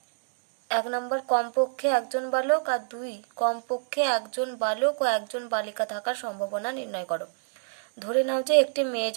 1 নম্বর কমপক্ষে একজন বালক আর 2 কমপক্ষে একজন বালক ও একজন বালিকা থাকার সম্ভাবনা নির্ণয় করো। ধরে নাও যে একটি মেয়ে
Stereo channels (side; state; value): left; silent; digital silence